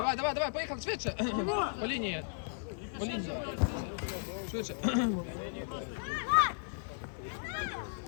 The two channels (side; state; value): right; silent; digital silence